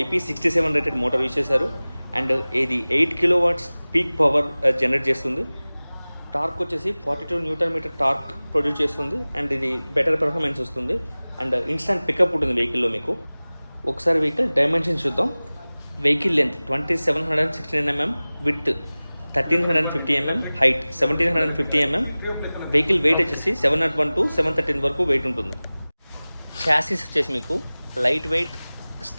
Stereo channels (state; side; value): inverted; both; correlation -0.99